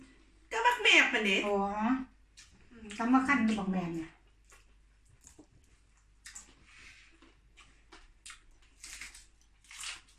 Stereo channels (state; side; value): identical; both; correlation 1.00